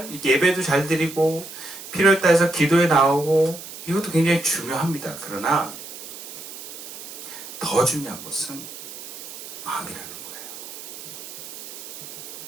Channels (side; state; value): right; noise; hiss, 12 dB below the sound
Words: 예배도 잘 드리고 필요에 따라서 기도에 나오고 이것도 굉장히 중요합니다. 그러나 더 중요한 것은 마음이라는 거예요.